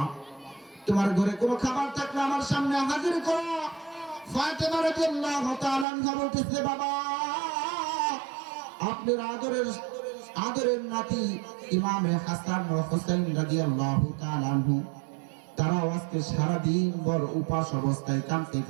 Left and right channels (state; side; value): drops out; left; at 5.9 s